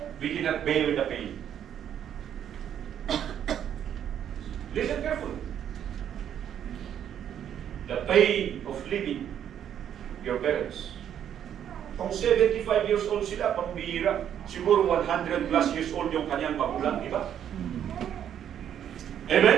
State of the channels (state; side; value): quieter; left; 9.6 dB